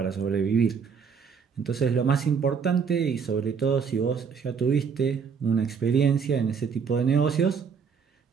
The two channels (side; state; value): left; quieter; 6.3 dB